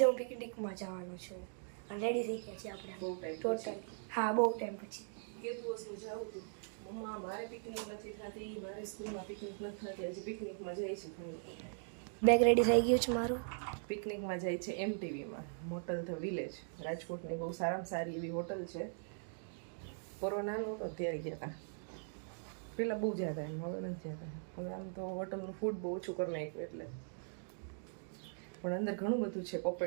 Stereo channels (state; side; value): silent; left; digital silence